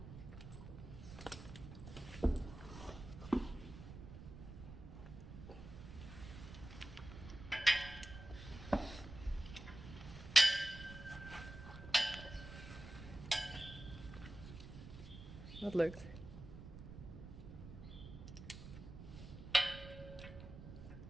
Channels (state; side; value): noise; right; rumble, 12 dB below the sound